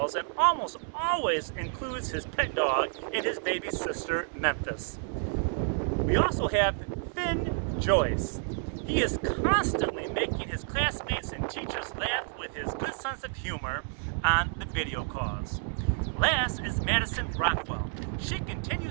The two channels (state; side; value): silent; left; 58 dB below the other